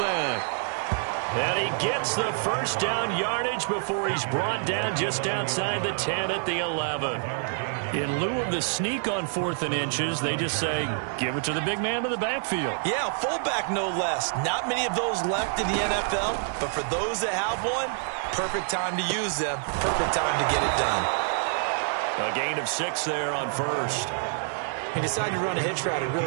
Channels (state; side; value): silent; left; 60 dB below the other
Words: And he gets the first down yardage before he's brought down just outside the 10 at the 11. In lieu of the sneak on 4th and inches, they just say, give it to the big man in the backfield. Yeah, fullback no less. Not many of those left in the NFL, but for those that have one, perfect time to use them. Perfect time to get it done. A gain of 6 there on first. He decided to run a hitch route. It